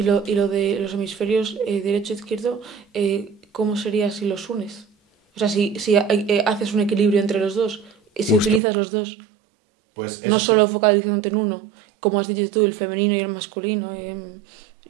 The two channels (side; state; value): left; drops out; at 8.6 s